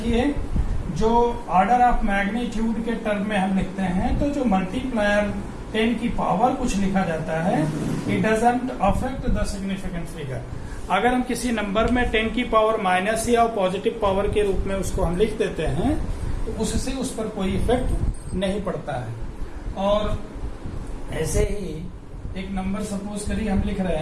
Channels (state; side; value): identical; both; correlation 1.00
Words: जो ऑर्डर ऑफ मैग्नीट्यूड के टर्म में हम लिखते हैं, तो जो मल्टीप्लायर 10 की पावर कुछ लिखा जाता है, it doesn't affect the significant figure. अगर हम किसी नंबर में 10 की पावर माइनस या पॉजिटिव पावर के रूप में उसको हम लिख देते हैं, तो उससे उस पर कोई इफेक्ट नहीं पड़ता है। और ऐसे ही एक नंबर सपोज करिए हम लिख